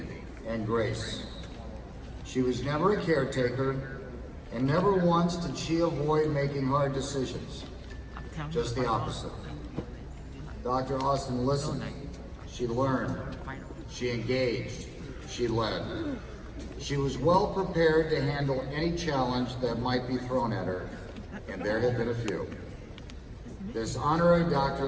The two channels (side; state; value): both; identical; correlation 1.00